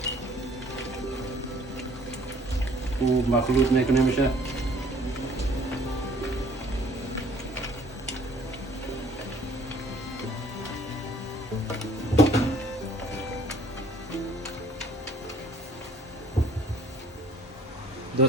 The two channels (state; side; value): normal; both; correlation 0.56